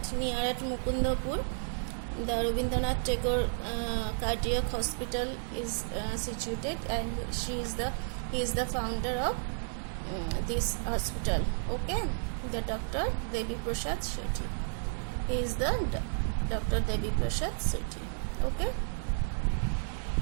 near at Mukundapur, the Rabindranath Tagore Cardiac Hospital is situated, and he is the founder of this hospital. Okay, the Dr. Devi Prasad Shetty. He is the Dr. Devi Prasad Shetty. Okay.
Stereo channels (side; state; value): left; silent; 56 dB below the other